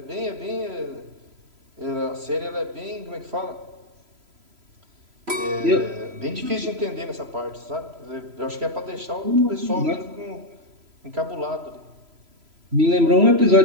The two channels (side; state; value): left; late; 3.0 ms